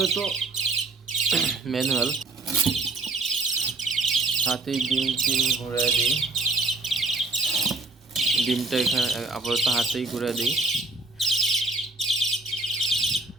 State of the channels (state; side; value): quieter; left; 3.3 dB